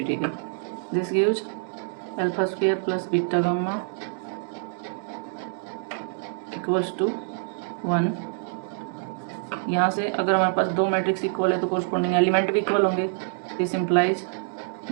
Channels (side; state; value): left; silent; digital silence